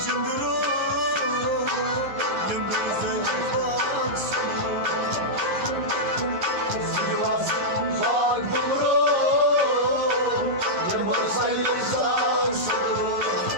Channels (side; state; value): left; late; 11 ms